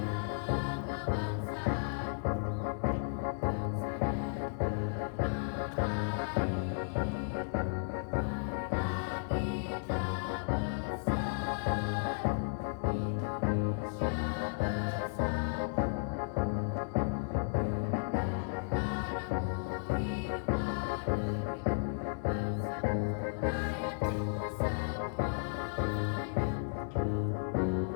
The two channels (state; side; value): silent; right; digital silence